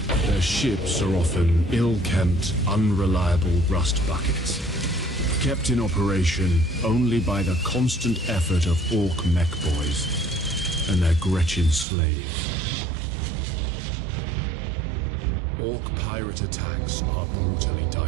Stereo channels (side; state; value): left; drops out; at 11.9 s